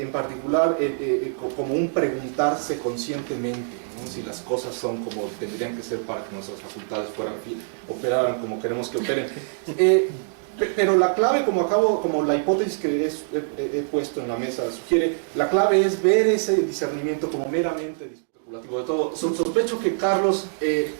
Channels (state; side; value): silent; left; digital silence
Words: como un preguntarse conscientemente, ¿no? Si las cosas son como tendrían que ser para que nuestras facultades operaran como queremos que operen. Pero la clave, como la hipótesis que he puesto en la mesa sugiere, la clave es ver ese discernimiento como meramente especulativo de todo. Sospecho que Carlos